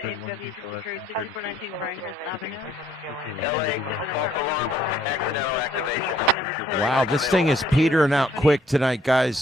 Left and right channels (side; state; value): both; normal; correlation 0.64